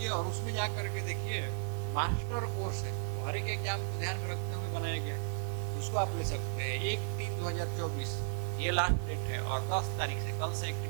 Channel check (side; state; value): left; silent; digital silence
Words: और उसमें जा करके देखिए मास्टर कोर्स है, हर एक एग्जाम को ध्यान में रखते हुए बनाया गया है, उसको आप ले सकते हैं। 1/3/2024 ये लास्ट डेट है और 10 तारीख से, कल से